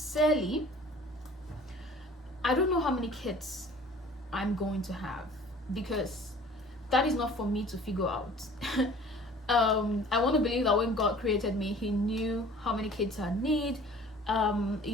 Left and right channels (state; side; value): normal; both; correlation 0.48